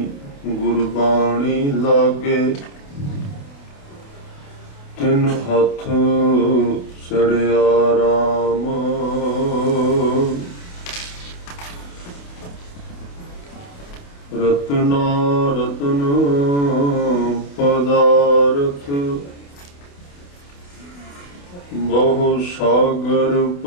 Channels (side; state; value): right; late; 28 ms